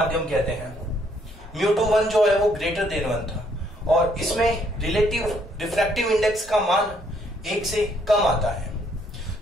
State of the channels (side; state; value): both; normal; correlation 0.68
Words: कहते हैं। μ2 जो है वो ग्रेटर देन 1 था, और इसमें रिलेटिव रिफ्रैक्टिव इंडेक्स का मान 1 से कम आता है।